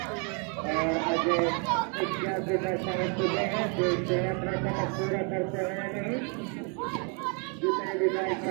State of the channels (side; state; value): left; quieter; 37.1 dB